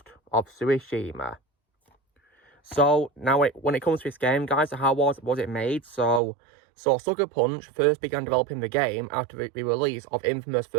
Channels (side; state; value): left; drops out; at 6.2 s